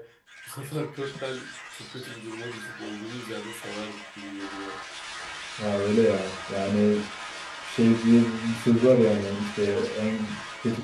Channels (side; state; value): both; identical; correlation 1.00